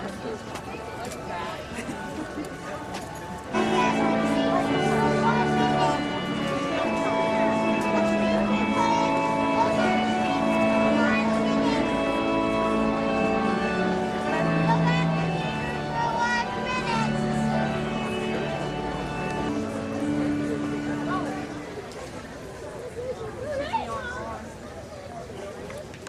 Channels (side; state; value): both; identical; correlation 1.00